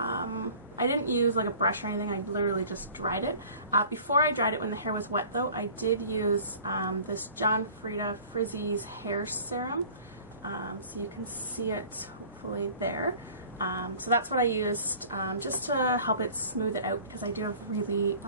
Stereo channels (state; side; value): inverted; both; correlation -0.47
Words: didn't use like a brush or anything, I literally just dried it. Before I dried it, when the hair was wet though, I did use this John Frieda Frizzy's hair serum. So you can see it hopefully there. So that's what I used just to help it smooth it out because I do have really